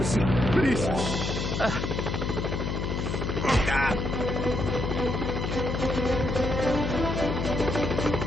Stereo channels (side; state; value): left; noise; hum, 1 dB below the sound